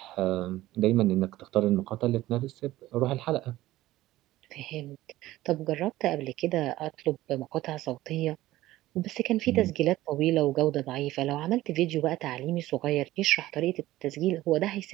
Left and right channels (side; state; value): left; quieter; 16.2 dB